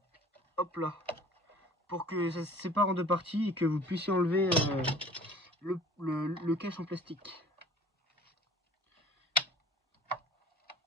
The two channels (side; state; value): both; normal; correlation 0.48